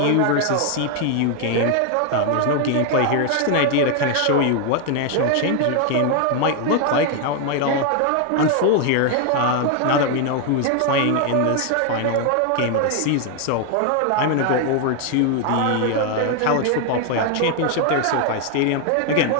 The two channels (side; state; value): both; different; correlation 0.00